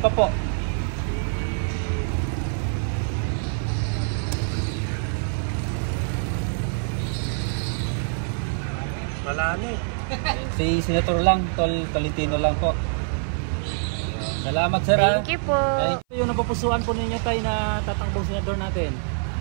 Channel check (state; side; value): silent; left; 58 dB below the other